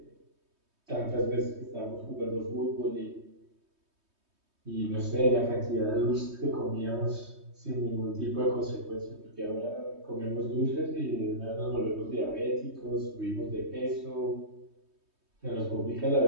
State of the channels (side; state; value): left; late; 3.2 ms